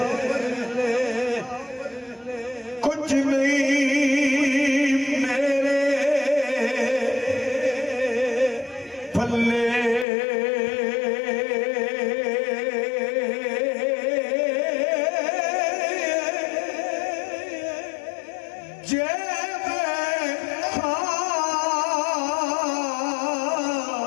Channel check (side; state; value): right; drops out; at 10.1 s